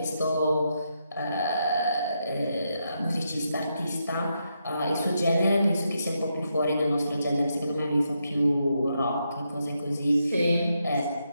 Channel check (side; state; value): both; inverted; correlation -0.82